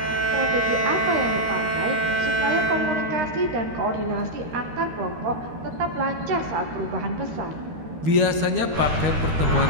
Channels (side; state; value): left; late; 13 ms